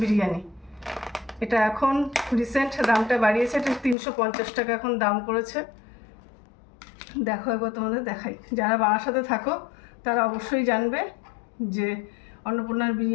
বিরিয়ানি এটা এখন রিসেন্ট দামটা বাড়িয়েছে, এটা 350 টাকা এখন দাম করেছে। দেখো একবার তোমাদের দেখাই। যারা বারাসাতে থাকো তারা অবশ্যই জানবে যে অন্নপূর্ণার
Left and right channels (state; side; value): drops out; right; at 4.0 s